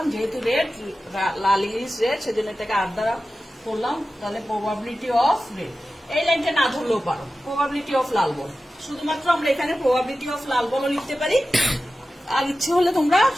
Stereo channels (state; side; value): normal; both; correlation 0.94